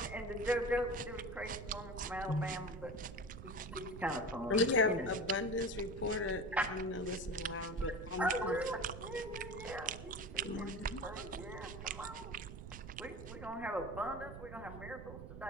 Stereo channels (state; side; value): noise; right; rumble, 11 dB below the sound